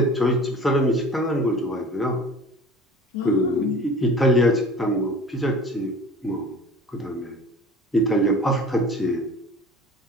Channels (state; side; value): normal; both; correlation 0.42